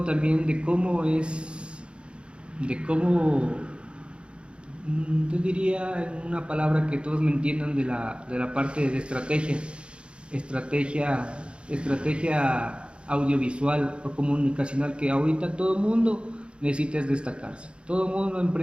también de cómo, yo diría en una palabra que todos me entiendan de la parte de estrategia, estrategia audiovisual o comunicacional que ahorita todo el mundo necesita destacarse. Todo el mundo,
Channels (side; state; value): left; late; 0.056 ms